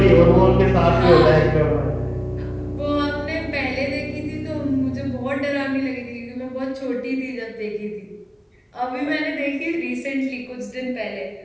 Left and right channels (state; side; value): identical; both; correlation 1.00